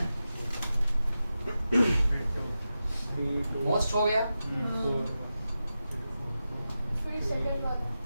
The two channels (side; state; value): both; inverted; correlation -0.92